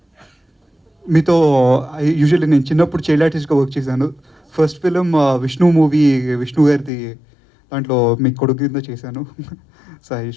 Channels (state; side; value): drops out; right; at 6.9 s